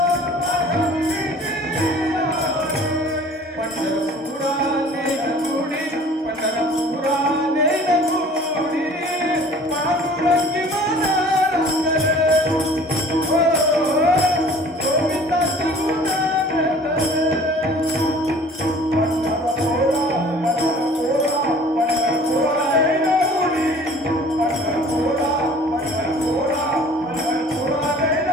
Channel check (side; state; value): both; normal; correlation 0.49